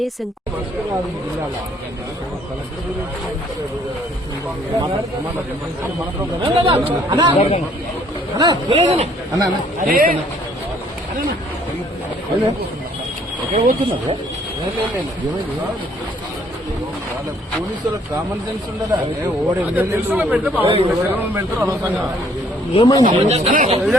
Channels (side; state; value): both; normal; correlation 0.62